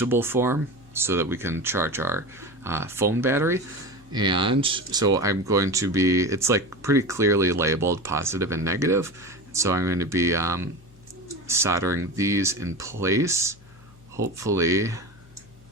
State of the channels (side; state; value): left; noise; hum, 24 dB below the sound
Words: form so that we can charge our phone battery. And so I'm going to be, it's like pretty clearly labeled positive and negative. So I'm going to be soldering these in place. Hopefully,